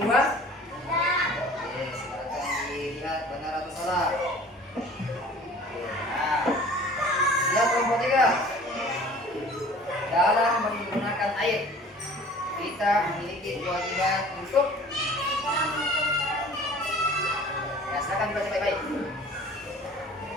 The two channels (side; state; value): both; normal; correlation 0.46